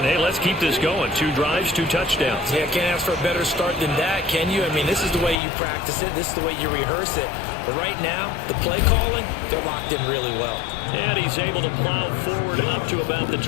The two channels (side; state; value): right; drops out; at 5.4 s